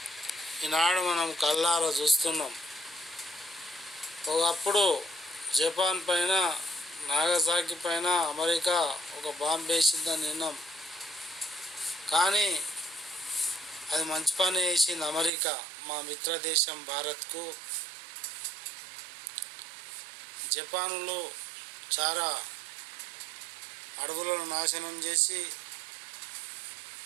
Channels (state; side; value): drops out; left; at 15.3 s